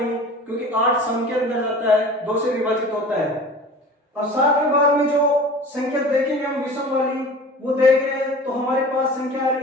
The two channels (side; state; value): both; normal; correlation 0.40